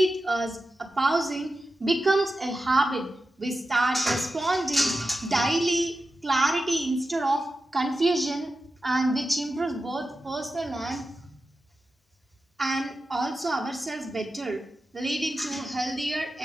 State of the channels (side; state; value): both; normal; correlation 0.92